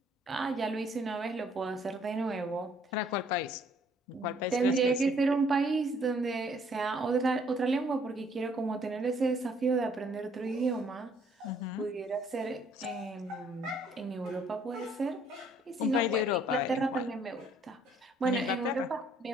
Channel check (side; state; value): both; normal; correlation 0.63